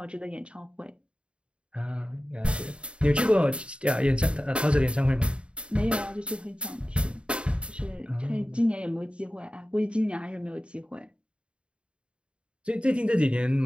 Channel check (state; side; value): late; left; 0.056 ms